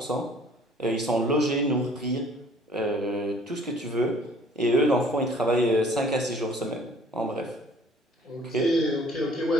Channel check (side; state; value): both; normal; correlation 0.55